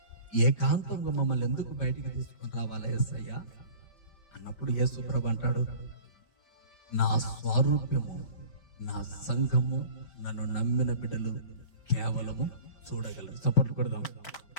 ఏకాంతంగా మమ్మల్ని ఎందుకు బయటికి తీసుకొని రావాలా యేసయ్య అన్నప్పుడు యేసు ప్రభు అంటాడు, నా స్వరూపము, నా సంఘము, నన్ను నమ్మిన బిడ్డలు కేవలము చూడగలరు. చప్పట్లు కొడదాం.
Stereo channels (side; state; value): right; late; 5.1 ms